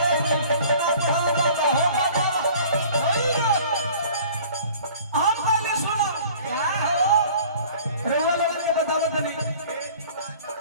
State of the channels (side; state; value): both; inverted; correlation -0.49